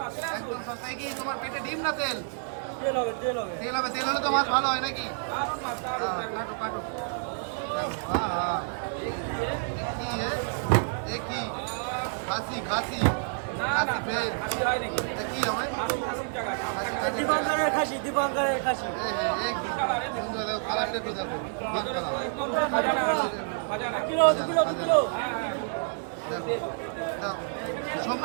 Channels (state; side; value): silent; left; 59 dB below the other